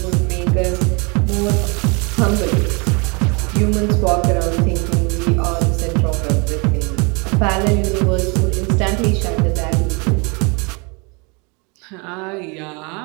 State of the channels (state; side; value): quieter; left; 31.0 dB